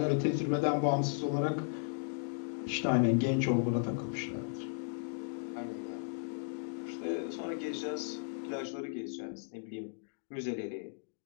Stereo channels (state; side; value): silent; right; digital silence